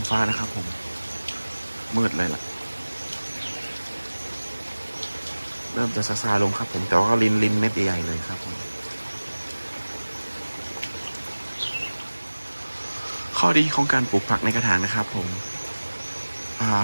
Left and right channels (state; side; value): inverted; both; correlation -1.00